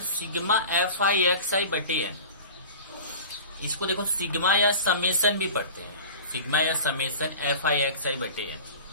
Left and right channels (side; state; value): both; inverted; correlation -0.37